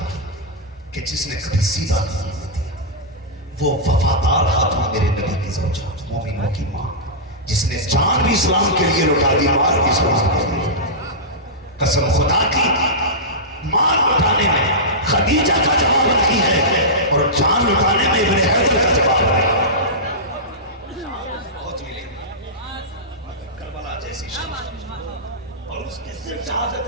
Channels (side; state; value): both; normal; correlation -0.14